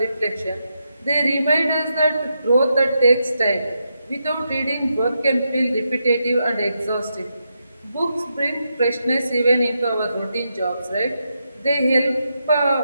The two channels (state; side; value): inverted; both; correlation -0.84